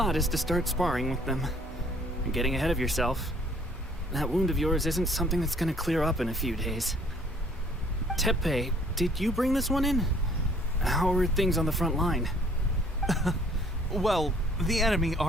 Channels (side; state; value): both; normal; correlation 0.59